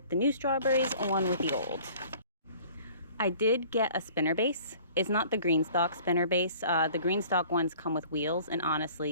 the new strawberries and one with the old. I did get a spinner base. It's not the Greenstalk spinner base. The Greenstalk ones come with wheels, and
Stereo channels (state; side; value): inverted; both; correlation -0.50